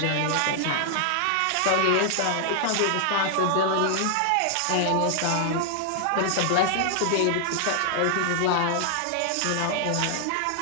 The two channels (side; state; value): both; different; correlation -0.01